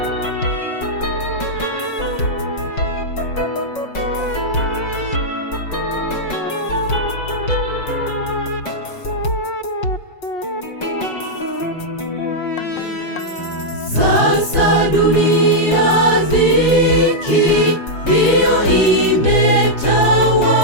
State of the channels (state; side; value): late; right; 5.5 ms